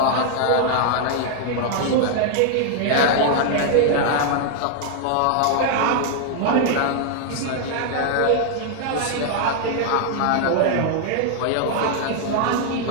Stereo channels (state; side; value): different; both; correlation 0.00